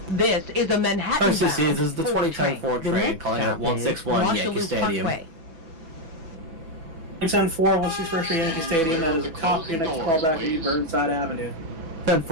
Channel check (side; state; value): left; late; 6.1 ms